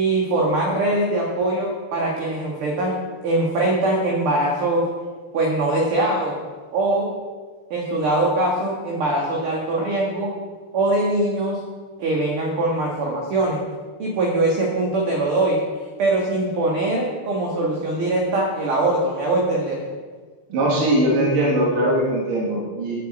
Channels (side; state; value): left; late; 6.7 ms